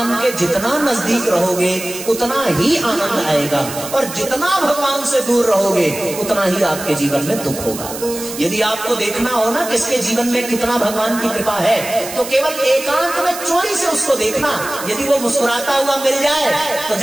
के जितना नजदीक रहोगे उतना ही आनंद आएगा, और जितना भगवान से दूर रहोगे उतना ही आपके जीवन में दुख होगा। यदि आपको देखना हो ना किसके जीवन में कितना भगवान की कृपा है, तो केवल एकांत में चोरी से उसको देखना। यदि वो मुस्कुराता हुआ मिल जाए तो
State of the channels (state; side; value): noise; right; hiss, 10 dB below the sound